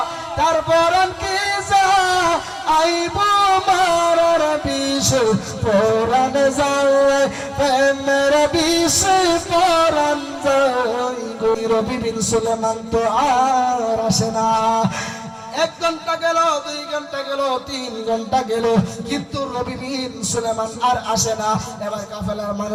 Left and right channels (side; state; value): both; identical; correlation 1.00